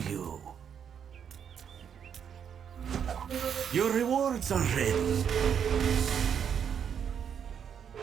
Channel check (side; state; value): left; quieter; 7.9 dB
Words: you. Your rewards are ready.